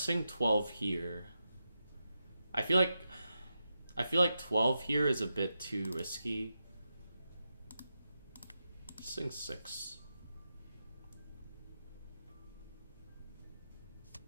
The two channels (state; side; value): inverted; both; correlation -0.88